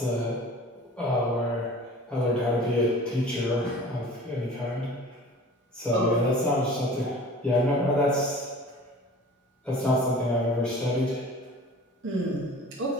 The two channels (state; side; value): normal; both; correlation 0.43